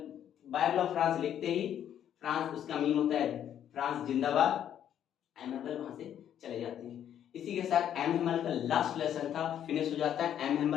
बाइबल ऑफ फ्रांस लिखते ही फ्रांस, उसका मीन होता है फ्रांस जिंदाबाद, एम हेमल वहां से चले जाते हैं। इसी के साथ एम हेमल का लास्ट लेसन था फिनिश हो जाता है। एम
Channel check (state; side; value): quieter; right; 10.0 dB